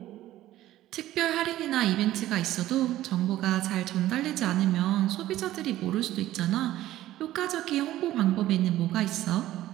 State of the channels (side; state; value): left; quieter; 14.5 dB